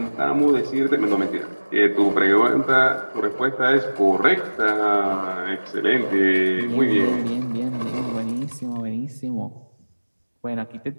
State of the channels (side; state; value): both; inverted; correlation -1.00